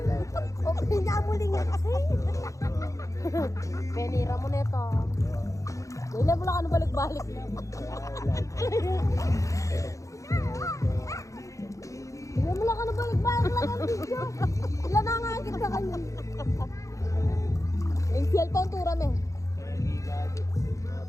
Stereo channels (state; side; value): late; right; 0.15 ms